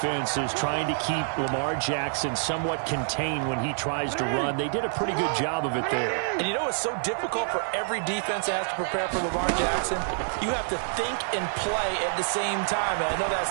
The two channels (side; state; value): left; silent; 60 dB below the other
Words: is trying to keep Lamar Jackson somewhat contained when he tries to run. They did a pretty good job of it there. And you know it's so difficult for every defense that has to prepare for Lamar Jackson? You have to think and play at the same time. And I know that